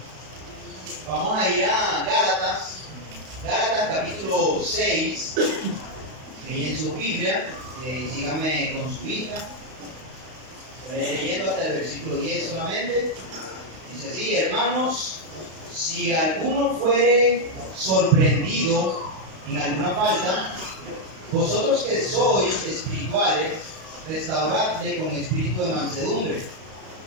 Vamos a ir a Gálatas capítulo 6, ahí en su Biblia, síganme con su vista, leyendo hasta el versículo 10 solamente. Dice así: hermanos, si alguno fuere sorprendido en alguna falta, vosotros que sois espirituales, restauradle con espíritu de mansedumbre,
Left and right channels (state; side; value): late; left; 32 ms